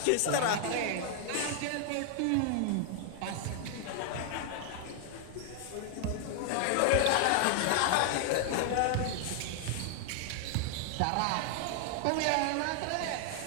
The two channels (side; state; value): both; different; correlation 0.00